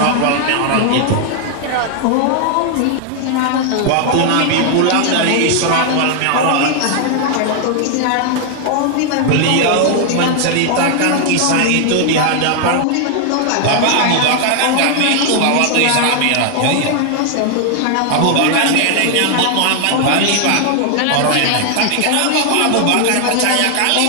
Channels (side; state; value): both; different; correlation 0.00